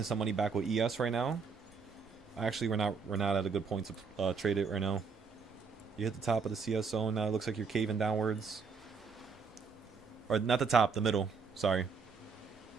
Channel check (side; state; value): left; quieter; 5.3 dB